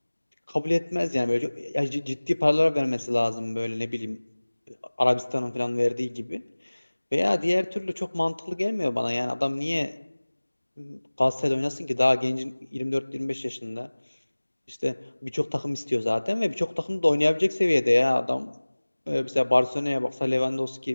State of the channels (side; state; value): both; inverted; correlation -1.00